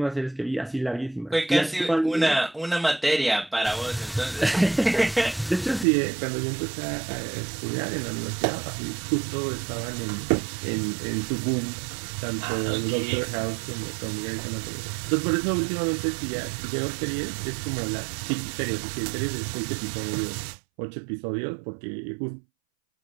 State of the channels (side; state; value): left; drops out; at 5.9 s